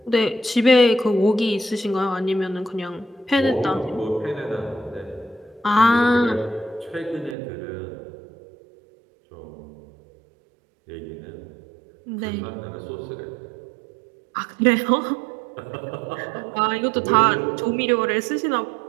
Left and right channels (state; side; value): drops out; left; at 7.4 s